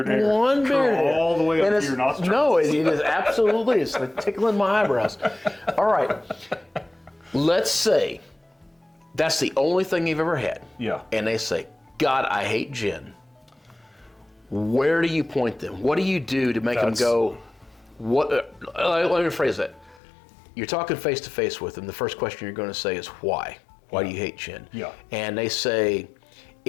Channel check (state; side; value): drops out; right; at 20.0 s